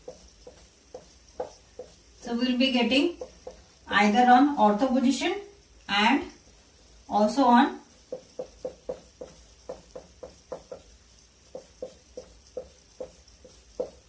So we will be getting either on ortho position and also on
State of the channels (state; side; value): identical; both; correlation 1.00